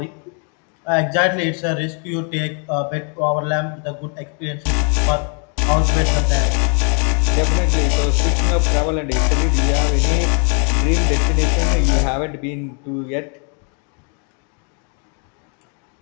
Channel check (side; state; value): right; quieter; 39.6 dB